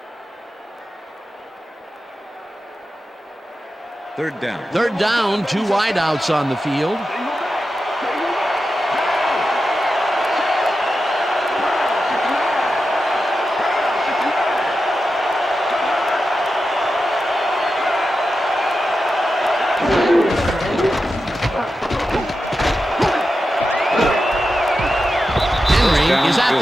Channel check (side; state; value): both; normal; correlation 0.90